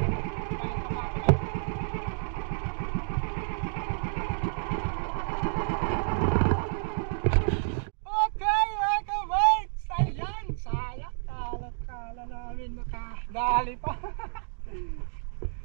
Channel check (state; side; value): silent; left; digital silence